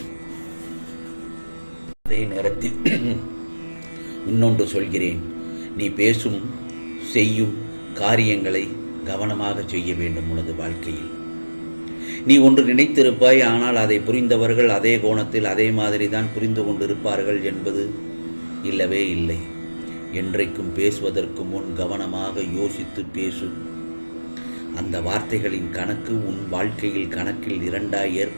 அதே நேரத்தில் இன்னொன்று சொல்கிறேன். நீ பேசும் செய்யும் காரியங்களை கவனமாக செய்ய வேண்டும். உனது வாழ்க்கையில் நீ ஒன்று நினைத்திருப்பாய், ஆனால் அதை புரிந்தவர்கள் அதே கோணத்தில் அதே மாதிரி தான் புரிந்து கொண்டிருப்பார்கள் என்பது இல்லவே இல்லை. என்றைக்கும் பேசுவதற்கு முன் கவனமாக யோசித்து பேசு. அந்த வார்த்தைகளின் கணக்கு உன் வாழ்க்கையில் கணக்கில் இரண்டாய்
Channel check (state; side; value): inverted; both; correlation -1.00